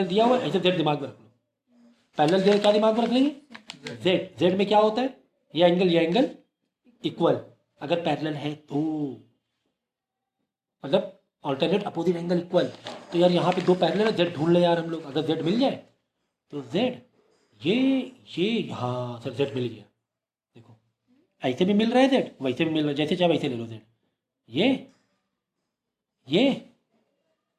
दिया हुआ है ऐसे जेड दिमाग में रख लो। पैरेलल दे क्या दिमाग में रख लेंगे, जेड, जेड में क्या होता है, ये एंगल इक्वल, अगर पैरेलल है तो मतलब ऑल्टरनेट अपोजिट एंगल इक्वल। तो यार यहाँ पे दो पैरेलल है, जेड ढूंढ ले यार हम लोग, अगर जेड मिल जाए तो जेड ये हाँ सर जेड मिल गया। देखो ऐसे भी मिल रहा है जेड, वैसे भी मिल रहा है, जैसे चाहे वैसे ले लो जेड। ये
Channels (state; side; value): identical; both; correlation 1.00